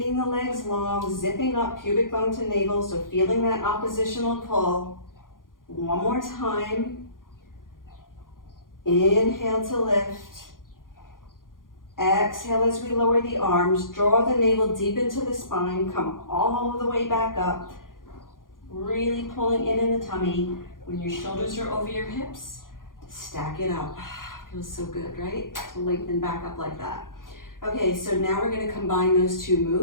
the legs long, zipping up pubic bone to navel, so feeling that oppositional pull. 1 more time. Inhale to lift. Exhale as we lower the arms. Draw the navel deep into the spine. Come all the way back up. Really pulling in the tummy. When your shoulders are over your hips, stack it up. Feels so good, right? To lengthen back up like that. Okay, so now we're going to combine those 2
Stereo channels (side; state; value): right; late; 0.90 ms